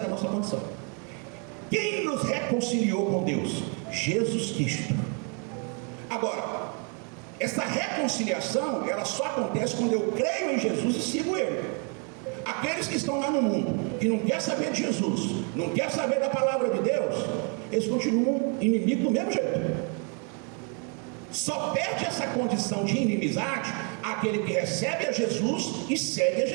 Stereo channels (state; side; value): quieter; left; 37.9 dB